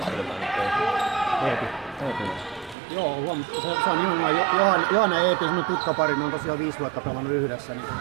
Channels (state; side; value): drops out; left; at 2.8 s